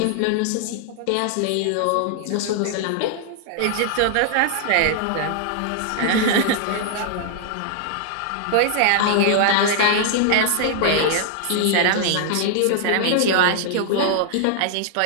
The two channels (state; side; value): different; both; correlation -0.01